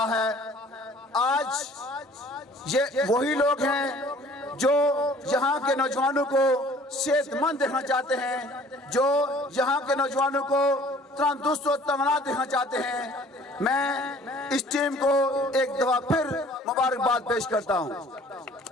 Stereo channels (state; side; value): normal; both; correlation 0.52